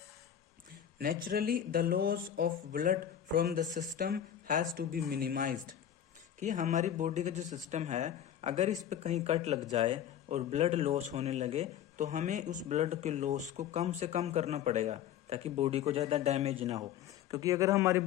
Naturally the loss of blood from the system has to be minimised, कि हमारी बॉडी का जो सिस्टम है, अगर इस पे कहीं कट लग जाए और ब्लड लॉस होने लगे, तो हमें उस ब्लड के लॉस को कम से कम करना पड़ेगा, ताकि बॉडी को ज़्यादा डैमेज ना हो। क्योंकि अगर हमारी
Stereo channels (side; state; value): right; quieter; 10.1 dB